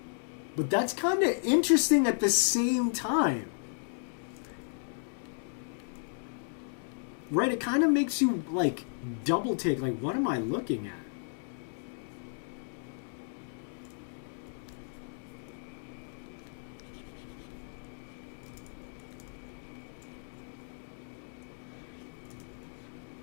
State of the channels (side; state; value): right; silent; digital silence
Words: But that's kind of interesting at the same time. Right? It kind of makes you, like, double take. Like, what am I looking at?